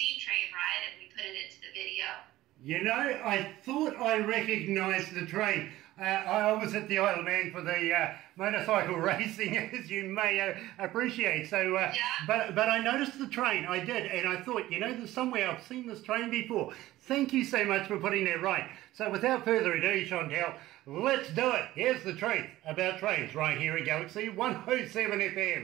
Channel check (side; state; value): left; quieter; 16.0 dB